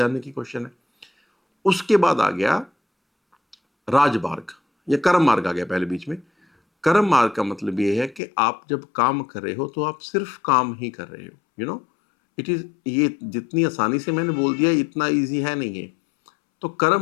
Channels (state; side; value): drops out; right; at 8.2 s